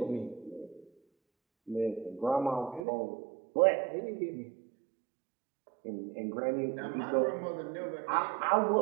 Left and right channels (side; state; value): left; drops out; at 2.9 s